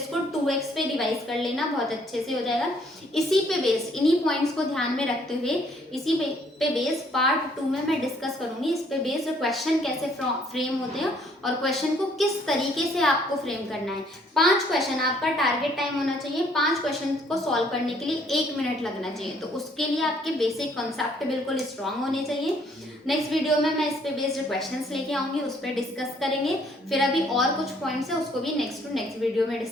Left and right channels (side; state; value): both; normal; correlation 0.64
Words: 2x पे रिवाइज कर लेना, बहुत अच्छे से हो जाएगा। इसी पे बेस, इन्हीं पॉइंट्स को ध्यान में रखते हुए इसी पे बेस पार्ट 2 में मैं डिस्कस करूंगी। इस पे बेस क्वेश्चन कैसे फ्रेम होते हैं और क्वेश्चन को किस तरीके से आपको फ्रेम करना है। 5 क्वेश्चन आपका टारगेट टाइम होना चाहिए, 5 क्वेश्चन को सॉल्व करने के लिए 1 मिनट लगना चाहिए। तो उसके लिए आपके बेसिक कॉन्सेप्ट बिल्कुल स्ट्रांग होने चाहिए। नेक्स्ट वीडियो में मैं इस पे बेस्ड क्वेश्चंस लेके आऊंगी, उस पर डिस्कस करेंगे। फिर अभी और कुछ पॉइंट्स है उसको भी नेक्स्ट वीडियो में